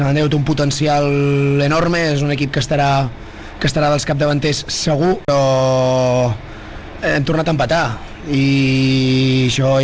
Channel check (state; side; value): identical; both; correlation 1.00